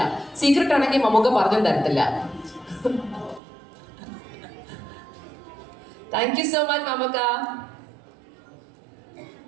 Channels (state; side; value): drops out; left; at 3.4 s